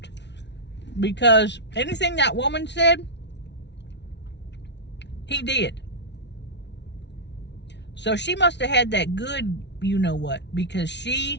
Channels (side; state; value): right; late; 0.50 ms